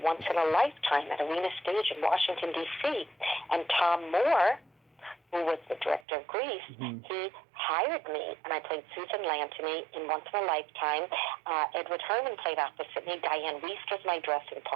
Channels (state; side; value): drops out; left; at 6.1 s